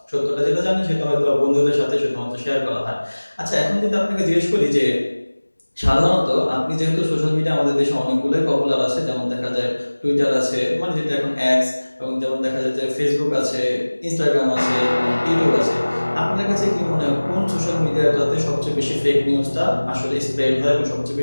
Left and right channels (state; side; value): inverted; both; correlation -1.00